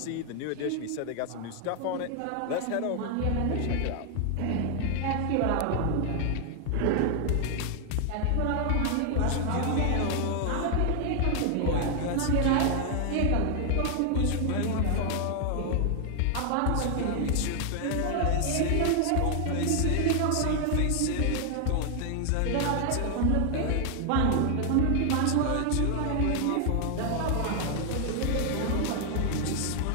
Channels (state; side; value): different; both; correlation 0.00